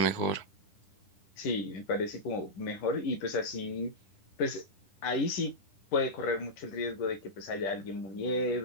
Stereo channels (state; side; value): late; right; 10 ms